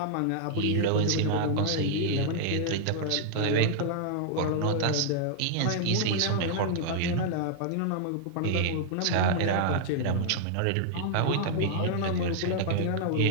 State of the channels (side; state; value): both; different; correlation 0.00